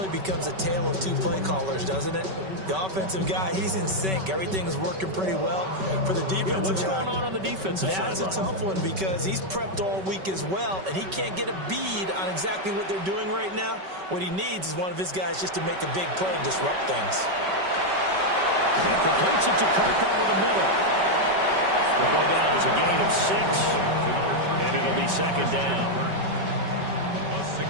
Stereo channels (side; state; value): left; late; 5.3 ms